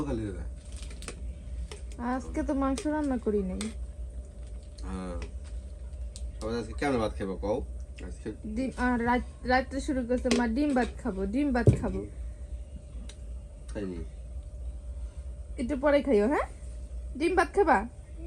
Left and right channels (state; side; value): identical; both; correlation 1.00